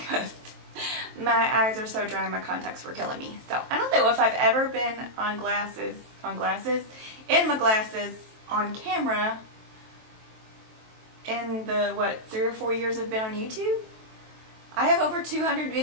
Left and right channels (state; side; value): late; left; 23 ms